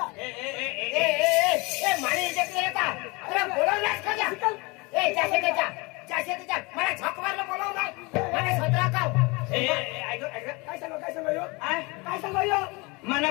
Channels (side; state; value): right; quieter; 26.6 dB